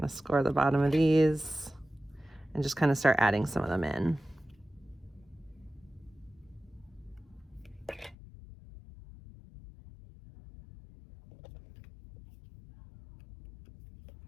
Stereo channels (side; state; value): right; drops out; at 8.2 s